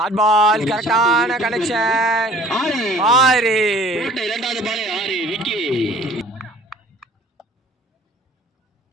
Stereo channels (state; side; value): normal; both; correlation 0.51